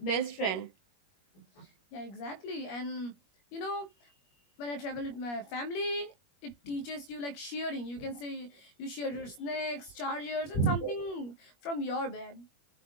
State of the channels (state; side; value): late; right; 21 ms